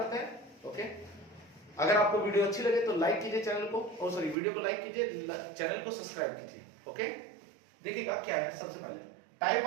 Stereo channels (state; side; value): drops out; left; at 4.4 s